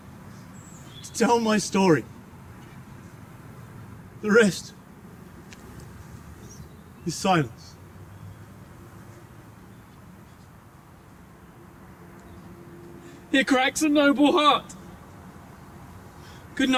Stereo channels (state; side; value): identical; both; correlation 1.00